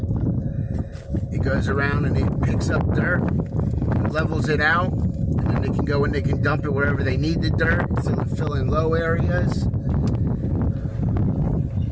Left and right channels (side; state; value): both; identical; correlation 1.00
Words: It goes around and it picks up dirt, levels it out, and then they can go and they can dump it wherever they need the dirt to fill in low areas.